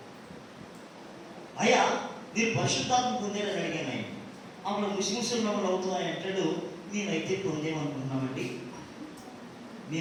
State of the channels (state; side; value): identical; both; correlation 1.00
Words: అయ్యా మీరు పరిశుద్ధాత్మ పొందేరని అడిగాను ఆయన. అప్పుడు ముస్లిమ్స్ మమ్మల్ని అవుతున్నాయి అంటాడు. మేమైతే పొందేమనుకుంటున్నామండి,